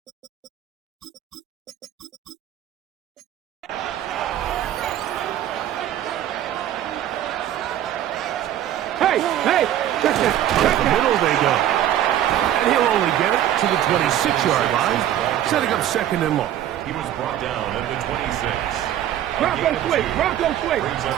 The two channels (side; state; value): left; quieter; 11.7 dB